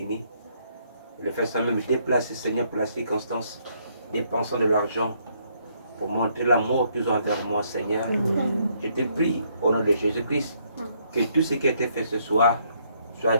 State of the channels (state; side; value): inverted; both; correlation -0.71